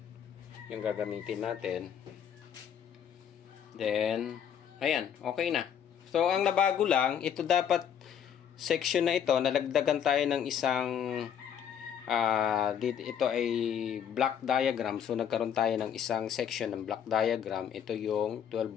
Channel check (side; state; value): right; quieter; 8.6 dB